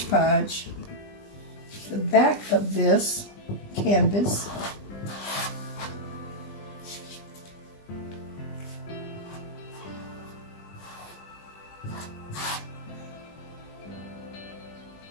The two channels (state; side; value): late; right; 20 ms